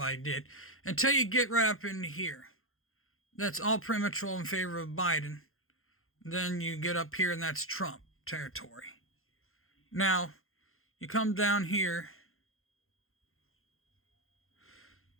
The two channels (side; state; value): right; late; 0.61 ms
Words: did. Until you get right up in here. That's all pretty much all in favor of Biden. Then you get up here, and that's Trump territory. Now, you come down here.